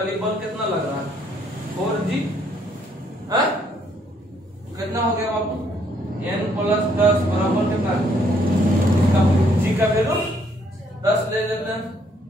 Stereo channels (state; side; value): normal; both; correlation 0.68